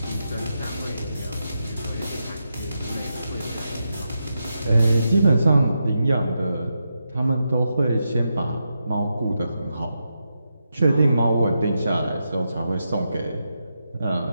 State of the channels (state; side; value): inverted; both; correlation -0.86